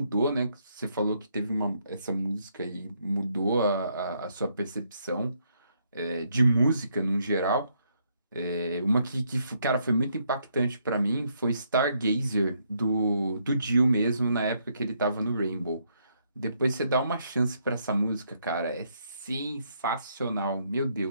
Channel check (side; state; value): both; inverted; correlation -0.73